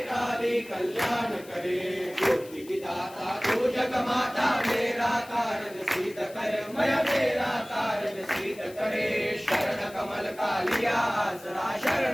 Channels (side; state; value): left; noise; hiss, 21 dB below the sound